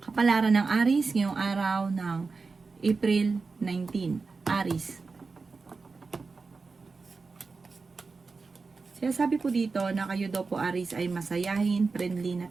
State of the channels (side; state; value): left; quieter; 4.3 dB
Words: Kapalaran ng Aries ngayong araw ng April 19. Aries. Sinasabi po dito na kayo daw po Aries ay masayahin, friendly na